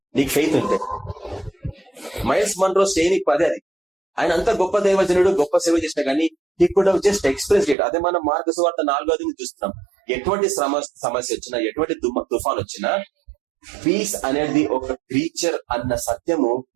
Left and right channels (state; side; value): drops out; left; at 7.8 s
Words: నీకు ఫెయిత్ ఉంటే. మైల్స్ మన్రో శ్రేణికి 10 అది. ఆయన అంత గొప్ప దైవజనుడు, గొప్ప సేవ చేసినా కానీ he could have just expressed it. అదే మనం మార్కు సువార్త 4వ చూస్తున్నాం. ఎటువంటి సమస్య వచ్చినా, ఎటువంటి తుఫాన్ వచ్చినా, పీస్ అనేది ఒక క్రీచర్ అన్న సత్యము